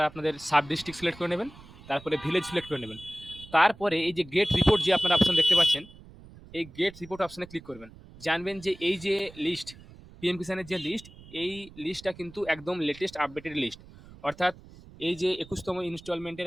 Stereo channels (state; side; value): noise; right; rumble, 20 dB below the sound